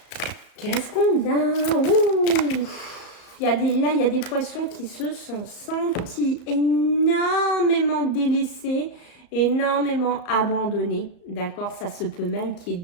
Qu'est-ce qu'on a? Ouh, là, il y a des poissons qui se sont sentis énormément délaissés, énormément abandonnés. D'accord, ça se peut même qu'il y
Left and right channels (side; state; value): right; late; 35 ms